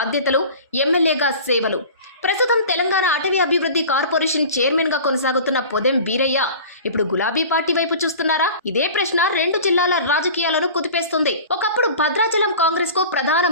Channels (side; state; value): both; inverted; correlation -0.39